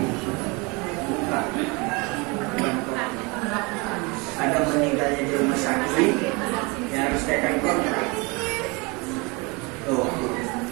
bukan. Ada meninggalnya di rumah sakit, ya harus tekan kontrak. Tuh,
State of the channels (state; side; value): quieter; left; 27.8 dB